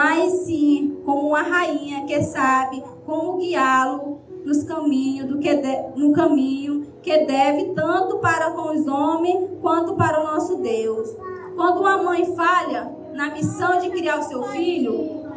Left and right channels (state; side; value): identical; both; correlation 1.00